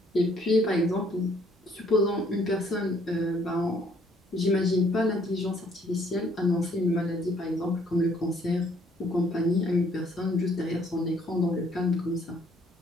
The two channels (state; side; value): normal; both; correlation 0.64